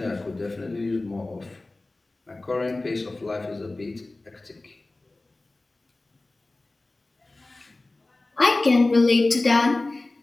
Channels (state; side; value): quieter; right; 3.0 dB